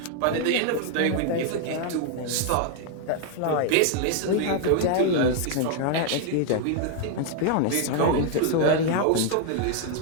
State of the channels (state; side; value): different; both; correlation 0.00